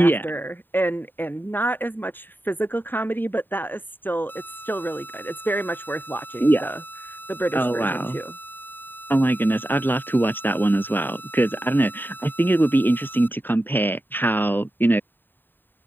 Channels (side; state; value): right; late; 0.093 ms